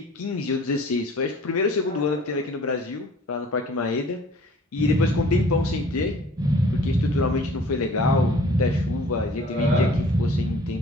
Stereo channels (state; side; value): normal; both; correlation 0.51